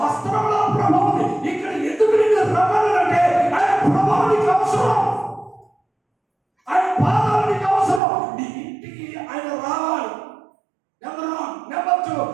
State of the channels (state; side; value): drops out; left; at 8.0 s